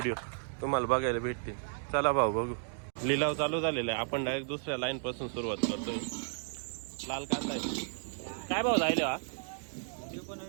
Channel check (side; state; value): left; silent; digital silence